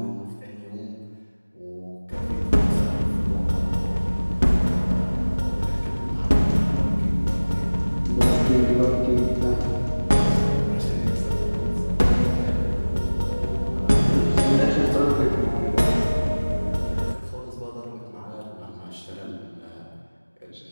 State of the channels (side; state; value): both; inverted; correlation -1.00